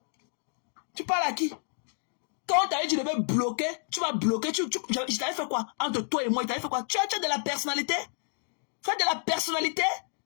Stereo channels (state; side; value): silent; right; 58 dB below the other